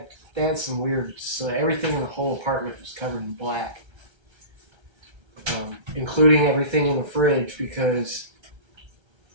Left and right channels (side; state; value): left; late; 1.3 ms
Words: some weird. So everything in the whole apartment was covered in black, including everything in the fridge, because